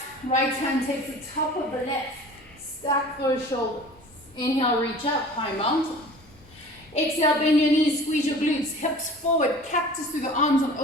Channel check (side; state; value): both; normal; correlation 0.43